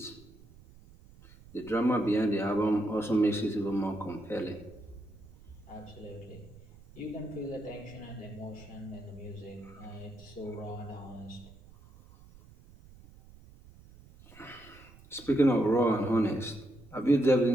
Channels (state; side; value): noise; right; rumble, 22 dB below the sound